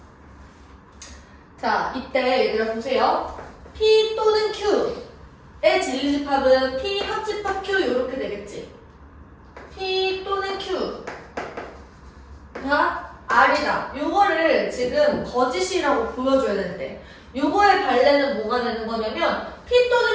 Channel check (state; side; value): identical; both; correlation 1.00